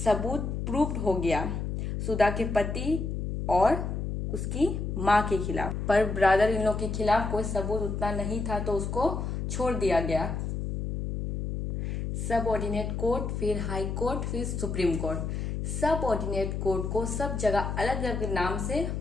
प्रूफ हो गया, सुधा के पति और उसकी मां के खिलाफ, पर ब्रदर इन लॉ के खिलाफ कोई सबूत उतना नहीं था तो उसको छोड़ दिया गया। सब ऑर्डिनेट कोर्ट, फिर हाई कोर्ट, फिर सुप्रीम कोर्ट। सब ऑर्डिनेट कोर्ट को सब जगह अलग अलग नाम से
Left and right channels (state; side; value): noise; left; hum, 3 dB below the sound